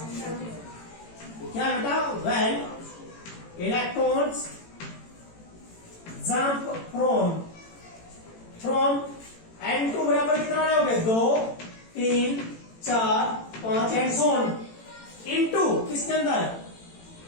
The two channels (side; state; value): right; late; 18 ms